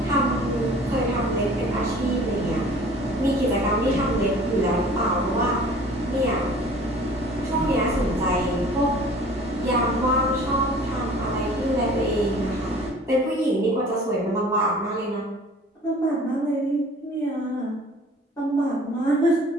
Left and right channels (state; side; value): normal; both; correlation 0.48